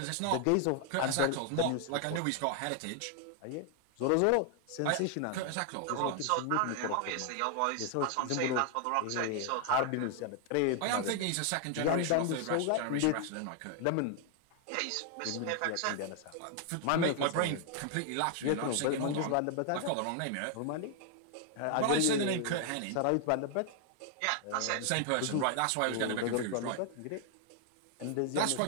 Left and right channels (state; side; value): different; both; correlation 0.00